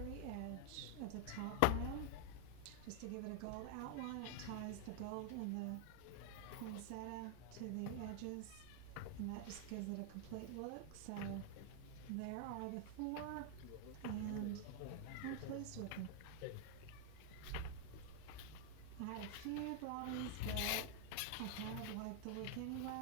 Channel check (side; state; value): both; different; correlation 0.00